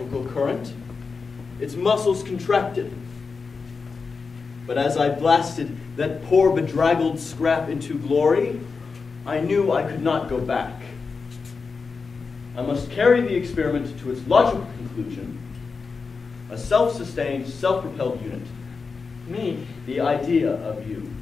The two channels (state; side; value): quieter; right; 4.8 dB